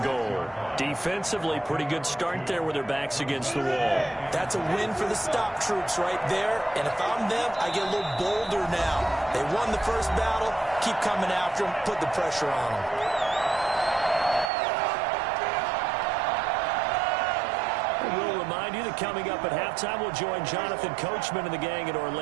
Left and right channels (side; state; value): left; drops out; at 14.5 s